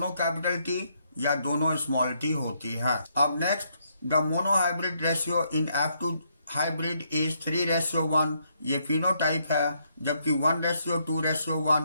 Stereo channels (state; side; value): inverted; both; correlation -0.74